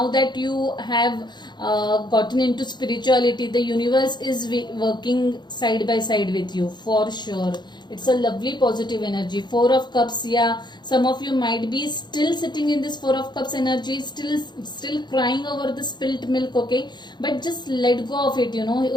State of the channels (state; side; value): late; right; 0.21 ms